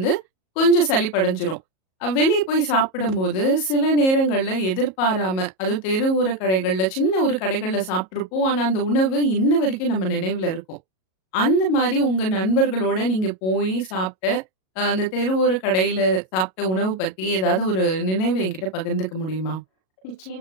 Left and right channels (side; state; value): right; late; 37 ms